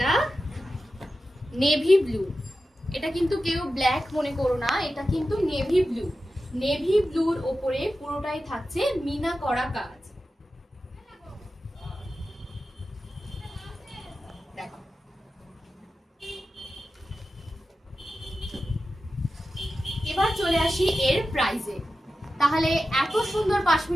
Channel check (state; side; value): normal; both; correlation 0.93